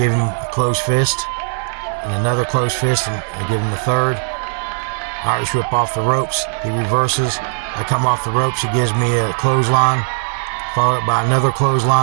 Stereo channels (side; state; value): left; silent; digital silence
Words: him a closed fist and another closed fist, and I give him a third. Irish whip off the ropes. He reverses. I come off the ropes. He gives me a clothesline, followed up by another